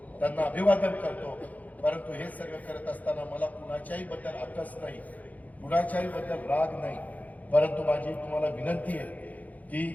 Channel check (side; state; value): right; late; 0.077 ms